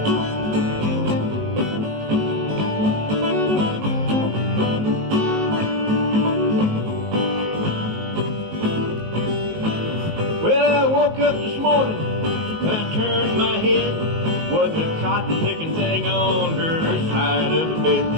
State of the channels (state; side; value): late; left; 19 ms